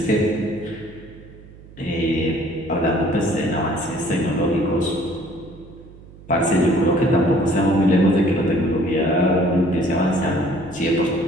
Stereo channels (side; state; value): right; noise; hum, 20 dB below the sound